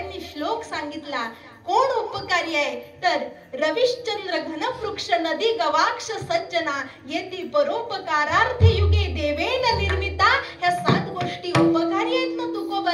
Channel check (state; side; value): identical; both; correlation 1.00